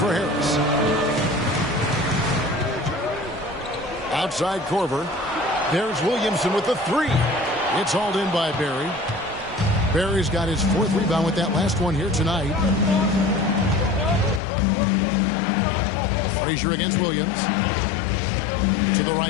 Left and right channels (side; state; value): right; drops out; at 14.4 s